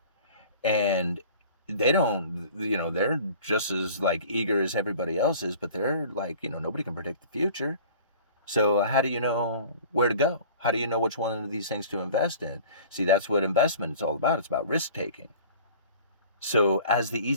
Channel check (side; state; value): both; inverted; correlation -0.45